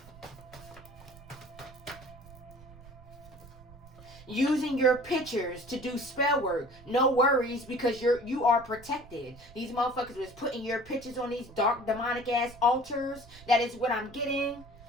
Using your pictures to do spell work. No worries, because you are protected. These motherfuckers was putting your pictures on these dark demonic ass altars. That is what I'm getting.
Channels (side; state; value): right; noise; rumble, 20 dB below the sound